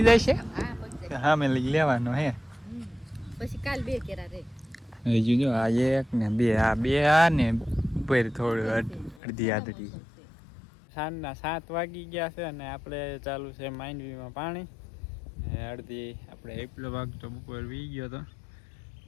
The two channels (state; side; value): drops out; right; at 9.2 s